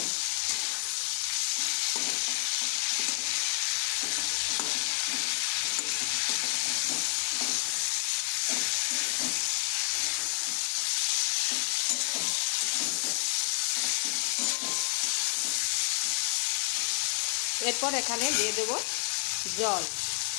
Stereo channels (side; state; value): right; silent; 58 dB below the other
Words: এরপর এখানে দিয়ে দেব জল।